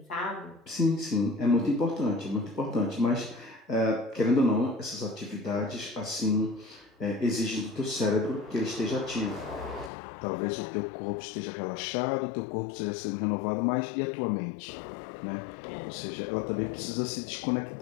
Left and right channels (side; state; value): right; drops out; at 9.9 s